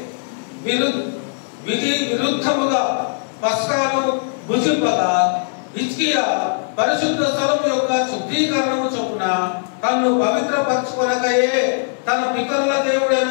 విధి విరుద్ధముగా పస్కాను భుజింపగా హిజ్కియా పరిశుద్ధ స్థలం యొక్క శుద్ధీకరణము చొప్పున తన్ను పవిత్రపరచుకొనకయే తన పితరుల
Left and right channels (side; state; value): right; silent; 66 dB below the other